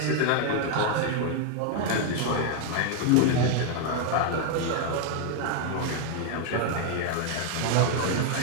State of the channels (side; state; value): both; different; correlation 0.00